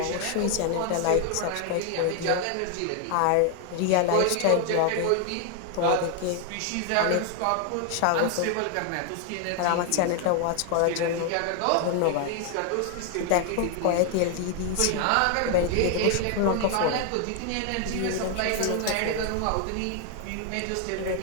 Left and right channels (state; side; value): different; both; correlation 0.01